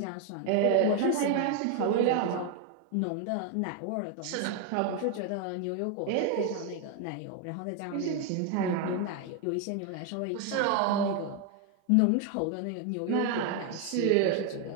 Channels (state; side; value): different; both; correlation 0.01